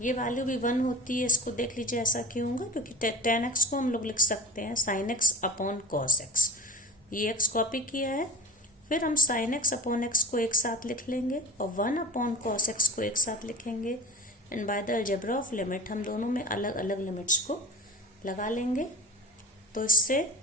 ये वैल्यू भी 1 होती है। इसको देख लीजिए ऐसा क्यों होगा, क्योंकि टेन एक्स को हम लोग लिख सकते हैं sign x upon cos x. ये एक्स कॉपी किया है, फिर हम साइन एक्स अपॉन एक्स को एक साथ लिख लेंगे और 1 अपॉन कॉस एक्स को एक साथ लिखेंगे। And by the algebra of limit हम दोनों में अलग अलग लिमिट्स को लगा लेंगे। तो इससे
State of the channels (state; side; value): normal; both; correlation 0.36